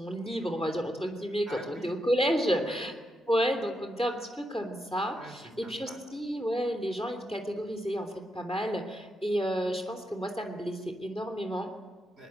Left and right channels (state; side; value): normal; both; correlation 0.83